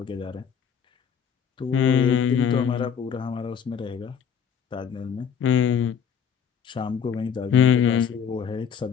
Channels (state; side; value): quieter; right; 7.4 dB